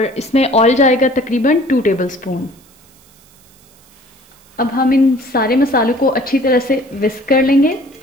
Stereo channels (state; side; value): noise; right; hiss, 29 dB below the sound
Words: इसमें ऑयल जाएगा तकरीबन 2 टेबलस्पून। अब हम इन सारे मसालों को अच्छी तरह से विस्क कर लेंगे।